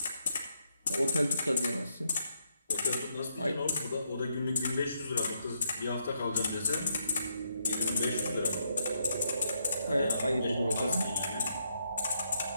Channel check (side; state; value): both; inverted; correlation -0.77